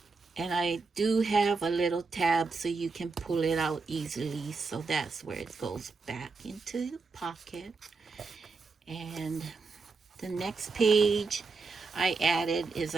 And I do have a little tab so you can pull it out easily, so that's where it goes back into the pocket. And the next page I added is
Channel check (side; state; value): left; quieter; 4.3 dB